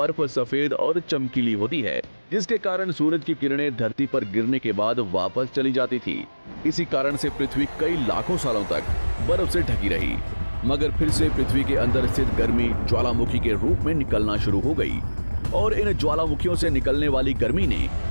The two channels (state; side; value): inverted; both; correlation -1.00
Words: सफेद और चमकीली होती है, जिसके कारण सूरज की किरणें धरती पर गिरने के बाद वापस चली जाती थी। इसी कारण से पृथ्वी कई लाखों सालों तक बर्फ से ढकी रही, मगर फिर से पृथ्वी के अंदर स्थित गर्मी ज्वालामुखी के रूप में निकलना शुरू हो गई और इन ज्वालामुखियों से निकलने वाली गर्मी ने